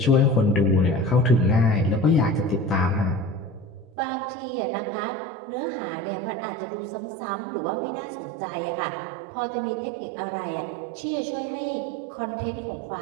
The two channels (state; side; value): drops out; left; at 3.9 s